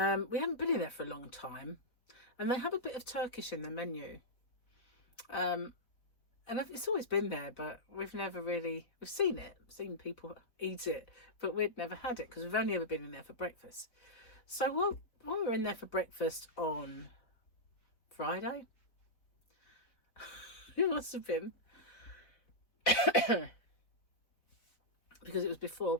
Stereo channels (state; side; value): late; right; 4.0 ms